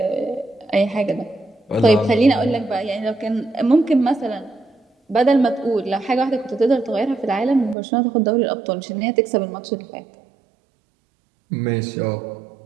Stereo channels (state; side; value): drops out; left; at 7.8 s